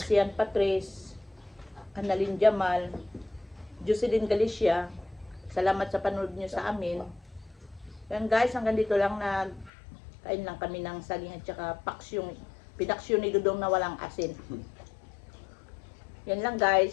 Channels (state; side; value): drops out; right; at 9.7 s